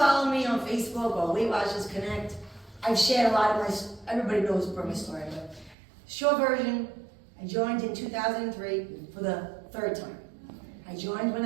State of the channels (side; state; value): left; drops out; at 5.8 s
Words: me on Facebook or Weight Watchers Connect, I've shared a lot of my, everybody knows my story, but short version, I joined in 2003 for the 3rd time. I joined when